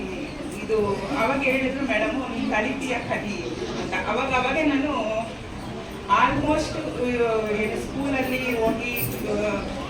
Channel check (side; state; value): both; identical; correlation 1.00